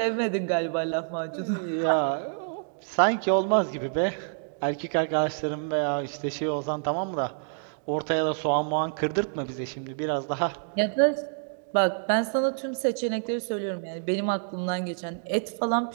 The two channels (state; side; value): silent; left; digital silence